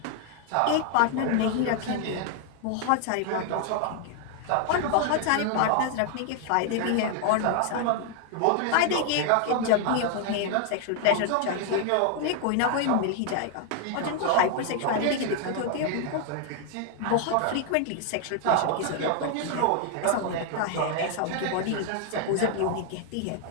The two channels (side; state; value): both; different; correlation 0.00